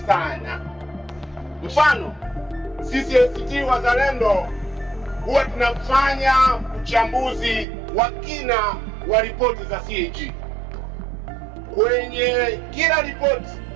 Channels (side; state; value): left; drops out; at 7.7 s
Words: sana. Mfano, sisi ACT Wazalendo huwa tunafanya uchambuzi wa kina wa ripoti za CAG. Kwenye kila ripoti,